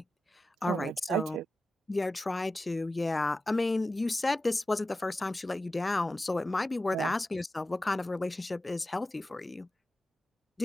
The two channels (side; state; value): both; normal; correlation 0.93